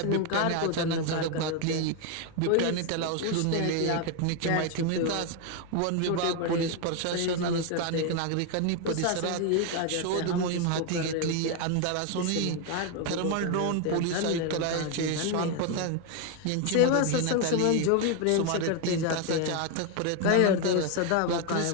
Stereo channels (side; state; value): both; different; correlation 0.01